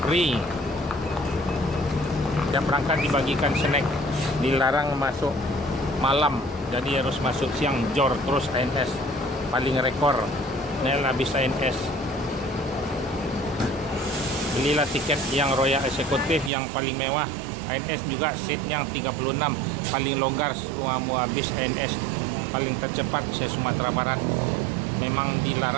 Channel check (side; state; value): left; drops out; at 16.5 s